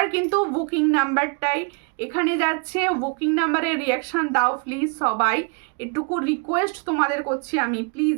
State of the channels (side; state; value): left; quieter; 35.0 dB